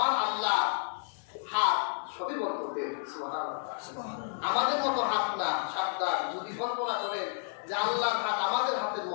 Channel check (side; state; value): right; silent; 57 dB below the other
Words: আল্লাহ হাত সবই বরকতের। সুবহানাল্লাহ। আমাদের মতো হাত না, সাবধান। যদি কল্পনা করেন যে আল্লাহর হাত আমাদের হাতের